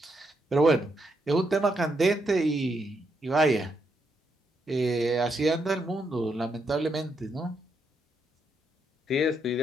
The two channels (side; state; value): both; normal; correlation 0.79